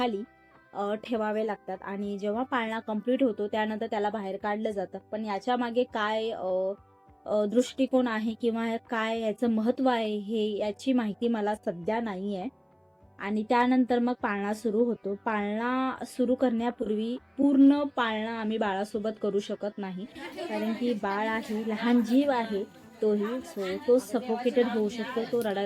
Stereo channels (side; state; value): both; identical; correlation 1.00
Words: ठेवावे लागतात आणि जेव्हा पाळणा कंप्लीट होतो त्यानंतर त्याला बाहेर काढलं जातं. पण याच्या मागे काय दृष्टिकोन आहे किंवा काय याचं महत्त्व आहे हे याची माहिती मला सध्या नाही आहे. आणि त्यानंतर मग पाळणा सुरू होतो. पाळणा सुरू करण्यापूर्वी पूर्ण पाळणा आम्ही बाळासोबत करू शकत नाही, कारण की बाळ आहे, लहान जीव आहे तोही. तो सफोकेटेड होऊ शकतो, तो